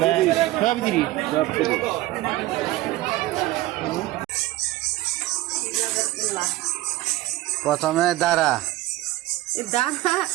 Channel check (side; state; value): left; quieter; 17.1 dB